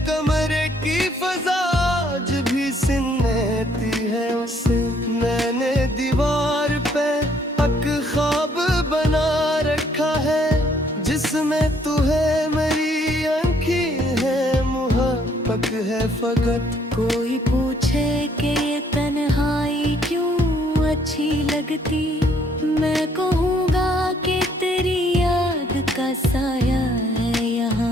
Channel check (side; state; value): both; normal; correlation 0.66